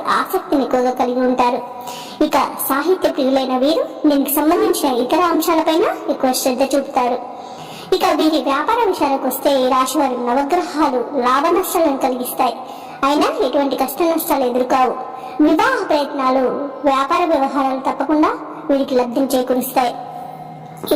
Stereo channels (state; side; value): identical; both; correlation 1.00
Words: ఆసక్తిని ఎక్కువగా కలిగి ఉంటారు. ఇక సాహిత్య ప్రియులైన వీరు దీనికి సంబంధించిన ఇతర అంశాలపైన ఎక్కువ శ్రద్ధ చూపుతారు. ఇక వీరి వ్యాపార విషయాలకు వస్తే ఈ రాశి వారి నవగ్రహాలు లాభ నష్టాలను కలిగిస్తాయి. అయినా ఎటువంటి కష్ట నష్టాలు ఎదుర్కావు. వివాహ ప్రయత్నాలు, వ్యాపార వ్యవహారాలు తప్పకుండా వీరికి లబ్ధి చేకూరుస్తాయి.